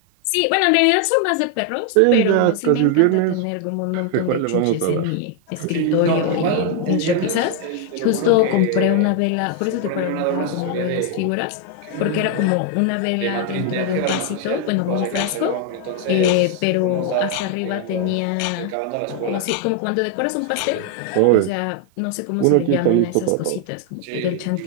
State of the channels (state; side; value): different; both; correlation 0.00